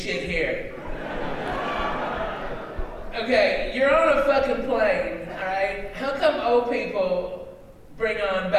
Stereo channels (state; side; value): identical; both; correlation 1.00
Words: here. Okay, you're on a fucking plane, alright? How come old people bring on